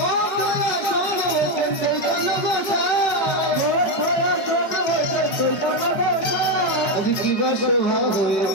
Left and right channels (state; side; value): late; right; 5.2 ms